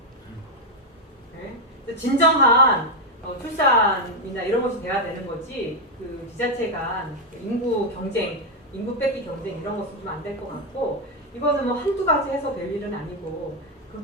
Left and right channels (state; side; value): normal; both; correlation 0.03